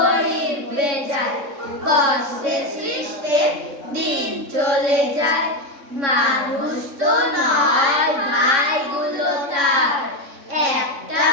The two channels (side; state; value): left; late; 3.6 ms